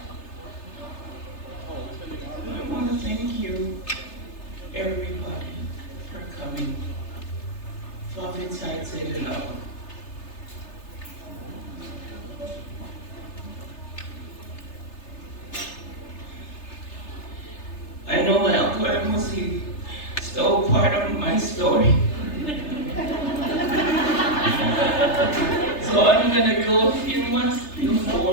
I want to thank you, everybody, for coming. Father, take it out. I know my Uncle Amos, he stole part of my story. So I'm gonna go a few months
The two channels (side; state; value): right; late; 3.3 ms